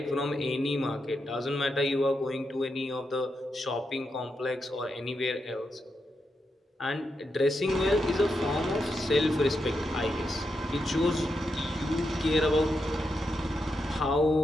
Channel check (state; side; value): normal; both; correlation 0.85